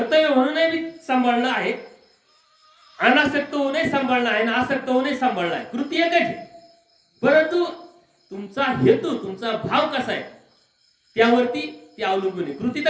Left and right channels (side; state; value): both; identical; correlation 1.00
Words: म्हणूनही मी सांभाळणं आहे, अनासक्त होऊनही सांभाळणं आहे, आणि आसक्त होऊनही सांभाळणं आहे. कृती एकच आहे, परंतु तुमचा हेतू, तुमचा भाव कसा आहे त्यावरती ते अवलंबून आहे. कृती